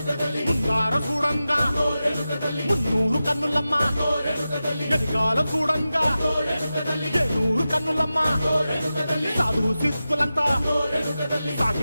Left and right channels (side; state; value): both; inverted; correlation -0.93